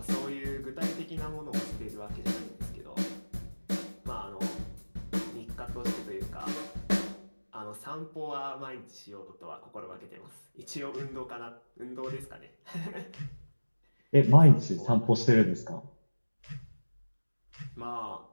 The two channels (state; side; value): inverted; both; correlation -1.00